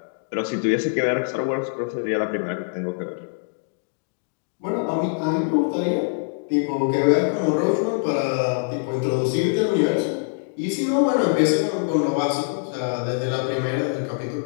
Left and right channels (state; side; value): silent; right; digital silence